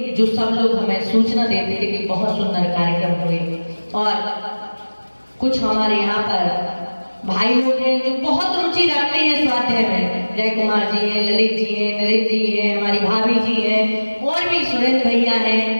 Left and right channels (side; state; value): both; inverted; correlation -1.00